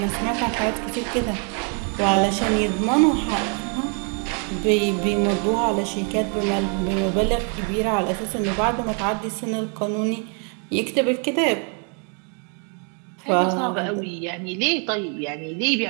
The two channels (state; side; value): quieter; left; 39.0 dB